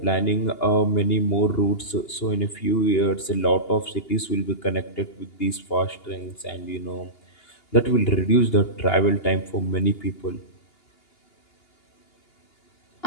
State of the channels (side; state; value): right; late; 2.8 ms